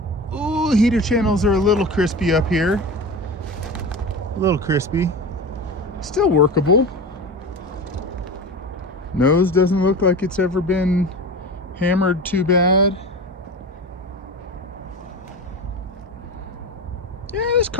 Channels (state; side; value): normal; both; correlation 0.29